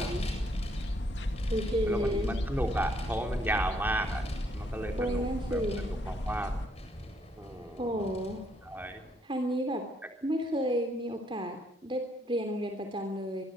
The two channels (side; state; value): both; normal; correlation 0.71